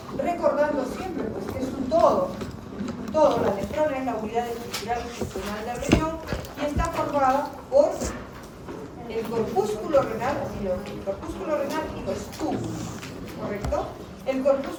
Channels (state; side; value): identical; both; correlation 1.00